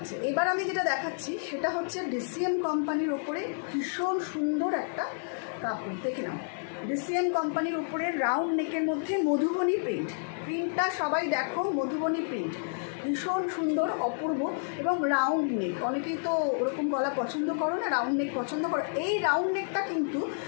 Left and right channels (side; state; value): right; silent; 58 dB below the other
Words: এবার আমি যেটা দেখাচ্ছি সেটা হচ্ছে ডিসিএম কোম্পানির ওপরে ভীষণ সুন্দর একটা কাপড়, দেখে নাও, ডিসিএম কোম্পানির উপরে রাউন্ড নেকের মধ্যে মধুবনী প্রিন্টটা সবাই দেখো, মধুবনী প্রিন্ট ভীষণ সুন্দর, অপূর্ব, এবং রাউন্ড নেক, অনেকেই তো ওরকম গলা পছন্দ করো না, রাউন্ড নেক পছন্দ করো। এই রাউন্ড নেকটা কিন্তু